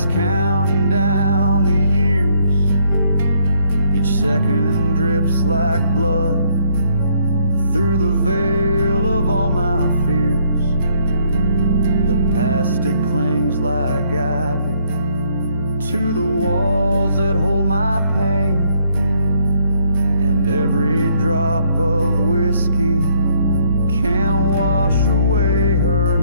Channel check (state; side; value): inverted; both; correlation -0.68